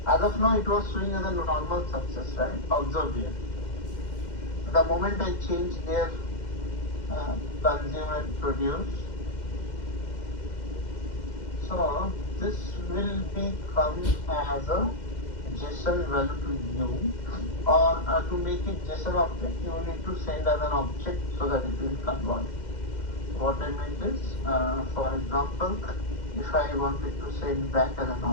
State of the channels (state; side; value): late; right; 2.1 ms